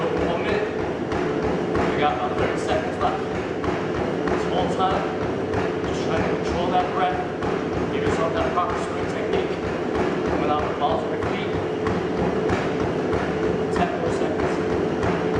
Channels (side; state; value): both; identical; correlation 1.00